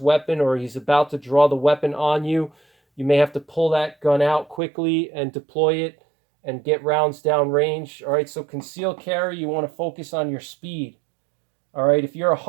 or he's about to draw the weapon on you. You may have to pull that gun out quickly and deploy it and get rounds down range. All right, so concealed carry, you want to focus on your speed. All right, if you're a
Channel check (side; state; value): left; drops out; at 4.6 s